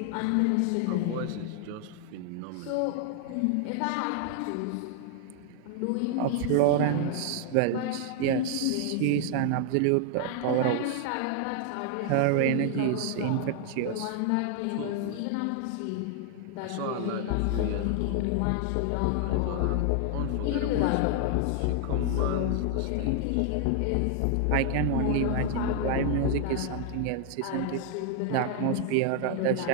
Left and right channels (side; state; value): both; different; correlation 0.00